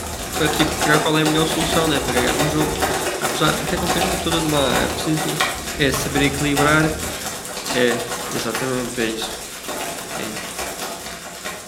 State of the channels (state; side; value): identical; both; correlation 1.00